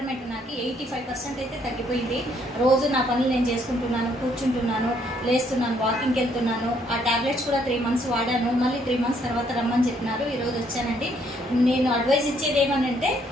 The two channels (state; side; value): normal; both; correlation 0.68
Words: నాకు 85% అయితే తగ్గిపోయింది. రోజు నా పనులు నేను చేసుకుంటున్నాను, కూర్చుంటున్నాను, లేస్తున్నాను, వాకింగ్కి వెళ్తున్నాను. ఆ ట్యాబ్లెట్స్ కూడా 3 months వాడాను. మళ్ళీ 3 months తర్వాత రమ్మని చెప్పినారు. ఈరోజు వచ్చానండి. నేను అడ్వైజ్ ఇచ్చేది ఏమనంటే